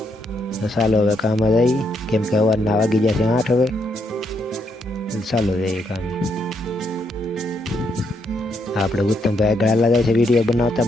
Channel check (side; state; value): both; normal; correlation 0.76